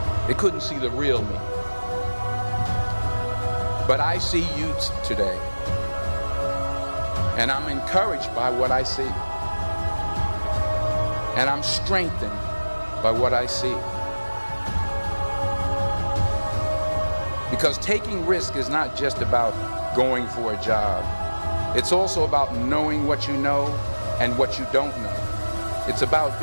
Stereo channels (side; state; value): both; inverted; correlation -1.00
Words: They couldn't see the real me. But I see you today, and I'm encouraged by what I see. And I'm strengthened by what I see. Because taking risk is not just about going for a job. It's also about knowing what you know and what you don't know. It's about